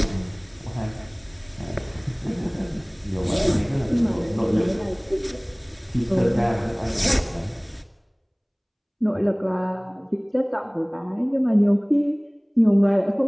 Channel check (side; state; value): both; identical; correlation 1.00